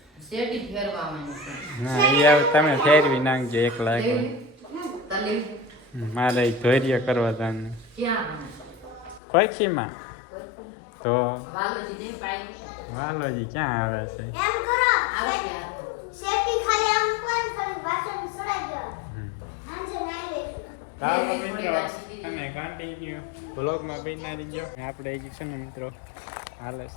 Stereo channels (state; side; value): drops out; right; at 9.2 s